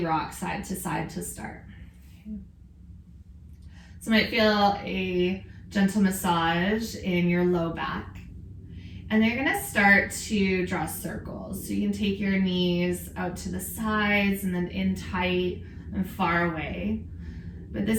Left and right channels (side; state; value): both; identical; correlation 1.00